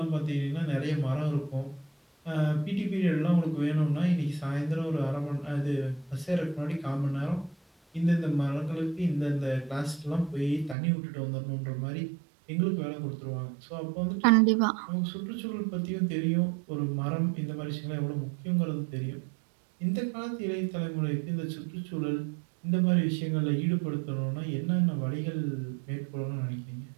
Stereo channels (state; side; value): drops out; left; at 10.8 s